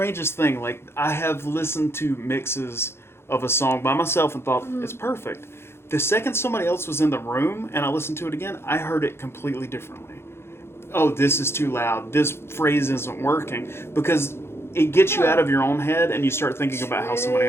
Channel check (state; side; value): late; right; 0.12 ms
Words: thing. Like, I have listened to mixes of a song by myself and thought it's perfect. The second somebody else was in the room and I listened to it again, I heard it completely differently. Oh, this is too loud. This phrase isn't working. Because it gets you out of your own head and you start thinking about how somebody